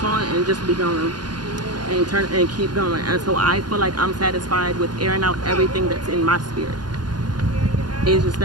on and just be going and turn and keep going. And so I feel like I'm satisfied with airing out everything that's in my spirit. It's just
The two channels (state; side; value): late; left; 0.70 ms